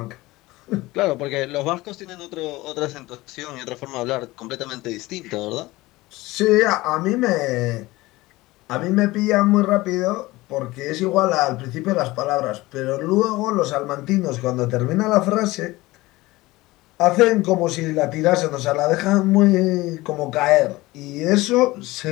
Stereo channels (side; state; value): right; quieter; 19.7 dB